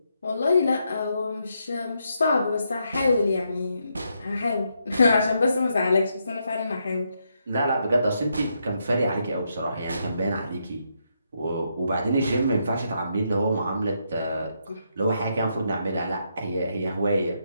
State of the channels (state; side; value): inverted; both; correlation -0.79